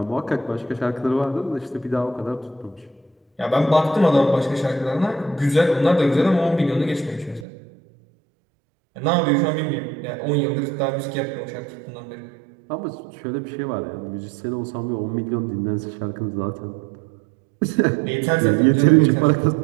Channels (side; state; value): left; drops out; at 7.5 s